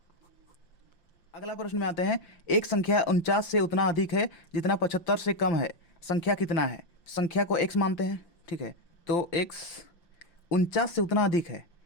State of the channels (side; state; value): right; late; 5.8 ms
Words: अगला प्रश्न में आते हैं। एक संख्या 49 से उतना अधिक है जितना 75 से कम है। संख्या कितना है? संख्या को x मानते हैं, ठीक है। तो x 49 से उतना अधिक है,